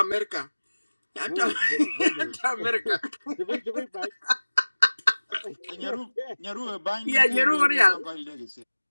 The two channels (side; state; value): both; inverted; correlation -1.00